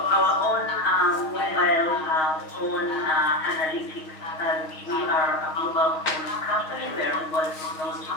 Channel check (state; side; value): late; right; 6.4 ms